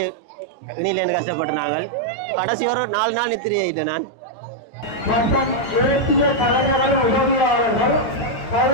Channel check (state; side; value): late; right; 9.1 ms